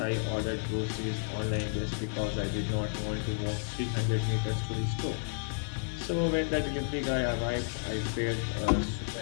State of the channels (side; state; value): right; silent; digital silence